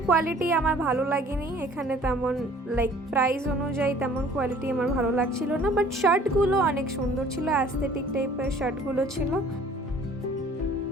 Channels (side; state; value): both; normal; correlation 0.53